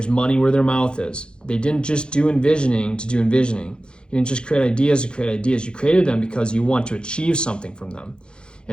money where their mouth is. They didn't just do envisioning to do envisioning. You didn't just create ideas to create ideas. You created them because you want to achieve something from them.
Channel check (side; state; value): right; late; 0.051 ms